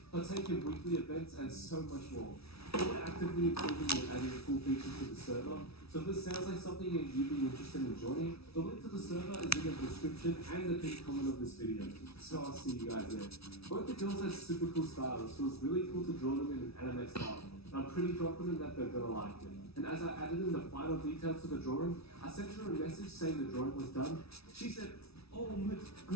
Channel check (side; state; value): right; late; 0.77 ms